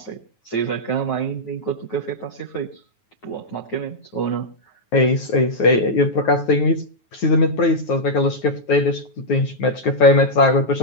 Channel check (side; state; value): right; late; 9.3 ms